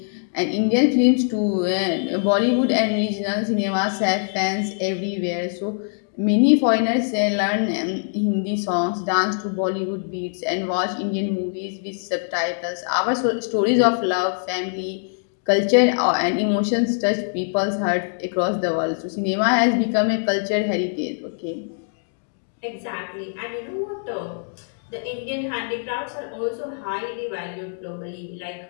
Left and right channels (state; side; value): silent; right; digital silence